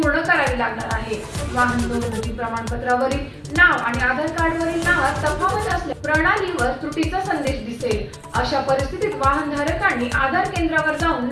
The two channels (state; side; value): identical; both; correlation 1.00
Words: करावी लागणार आहे। वाहन नोंदणी प्रमाणपत्रावरील नाव आणि आधार कार्डवरील नावात तफावत असल्यास प्रणालीवर त्रुटीचा संदेश दिसेल। अशा परिस्थितीत वाहनधारकांनी आधार केंद्रावर जाऊन